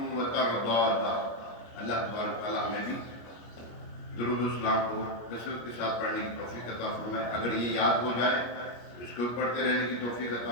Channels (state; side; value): late; right; 25 ms